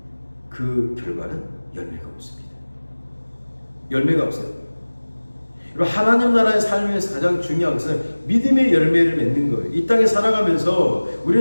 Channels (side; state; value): both; inverted; correlation -1.00